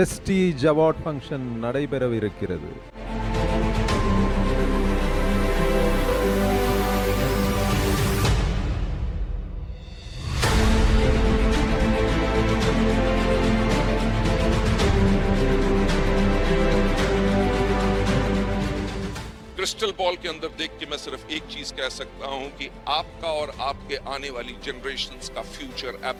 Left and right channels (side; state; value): both; identical; correlation 1.00